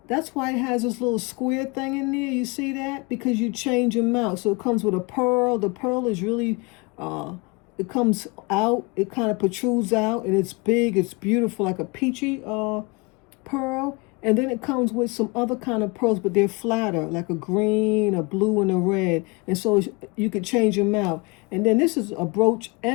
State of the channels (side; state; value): right; quieter; 27.5 dB